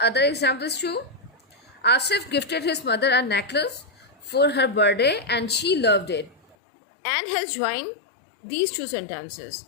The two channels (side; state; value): right; drops out; at 6.6 s